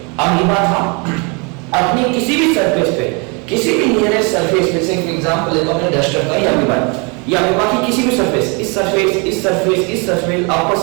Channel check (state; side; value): quieter; left; 32.0 dB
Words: अमीबा था अपनी किसी भी सरफेस पे, किसी भी नियरेस्ट सरफेस पे से एग्जांपल लेता हूं मैं डस्टर का, या अमीबा की किसी भी सरफेस, इस सरफेस, इस सरफेस, इस surface, upper